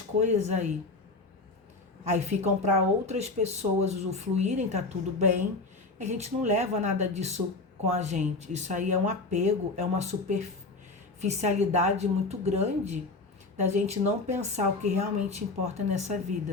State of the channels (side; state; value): right; quieter; 3.5 dB